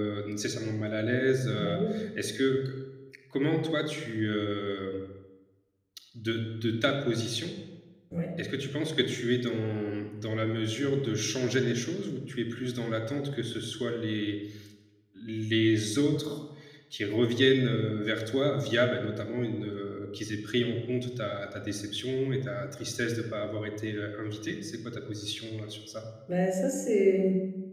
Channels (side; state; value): both; identical; correlation 1.00